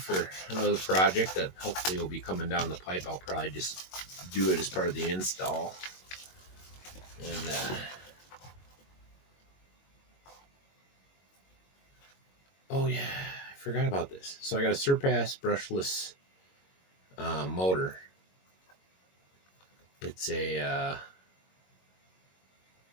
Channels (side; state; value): right; late; 22 ms